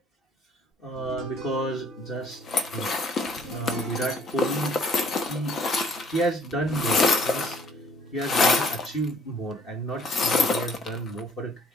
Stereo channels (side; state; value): both; normal; correlation 0.60